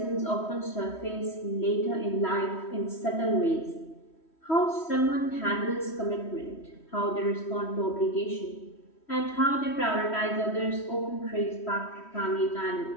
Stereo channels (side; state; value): right; late; 3.1 ms